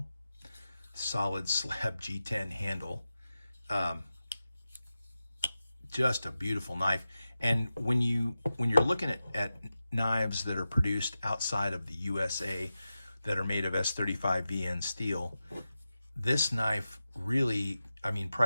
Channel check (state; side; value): inverted; both; correlation -0.92